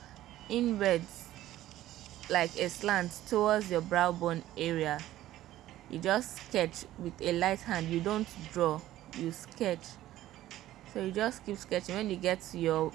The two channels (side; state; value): left; quieter; 14.2 dB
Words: inwards, like a slant towards your brow bone area. You just sketch with a light hand. You don't draw, you sketch. So you just keep sketching. When you get to your